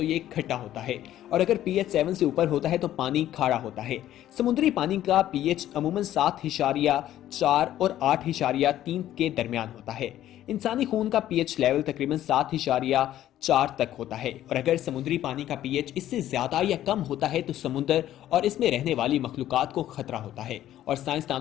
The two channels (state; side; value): quieter; right; 12.6 dB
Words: ये खट्टा होता है, और अगर pH 7 से ऊपर होता है तो पानी खारा होता है। समुद्री पानी का pH अमूमन 7.4 और 8.3 के दरमियान होता है। इंसानी खून का pH लेवल तकरीबन 7.4 तक होता है, और अगर समुद्री पानी का pH इससे ज्यादा या कम होता है तो समुद्र और इसमें रहने वाली मखलूकात को खतरा होता है। और